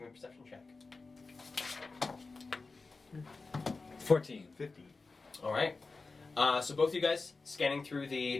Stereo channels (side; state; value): right; quieter; 3.9 dB